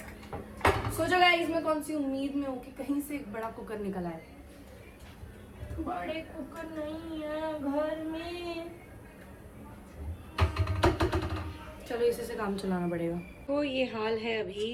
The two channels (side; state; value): both; identical; correlation 1.00